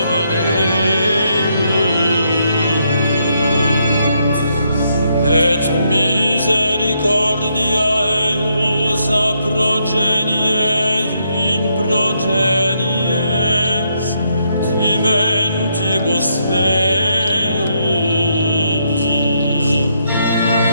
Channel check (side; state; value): both; inverted; correlation -0.76